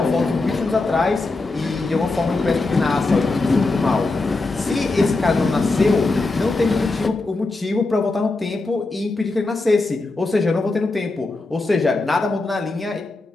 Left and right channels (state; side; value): quieter; right; 3.3 dB